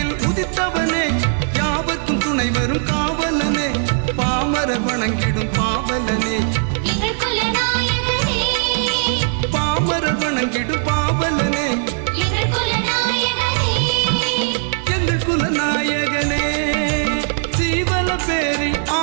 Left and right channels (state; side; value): silent; left; digital silence